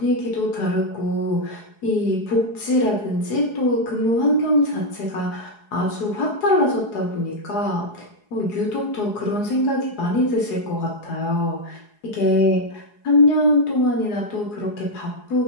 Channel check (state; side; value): late; right; 4.8 ms